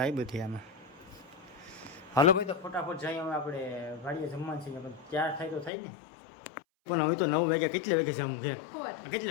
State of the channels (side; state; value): right; drops out; at 5.7 s